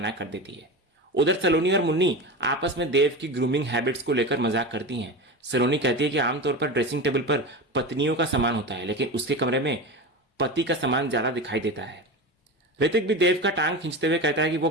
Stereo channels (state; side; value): normal; both; correlation 0.25